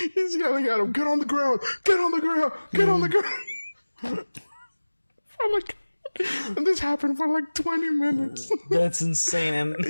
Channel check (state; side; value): inverted; both; correlation -1.00